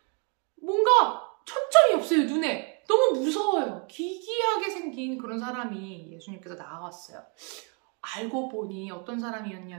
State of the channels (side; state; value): left; quieter; 37.1 dB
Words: 뭔가 초점이 없어요. 눈에. 너무 무서워요. 기괴하게 생긴 그런 사람이 예수님께서 나왔어요. 알고 보니 어떤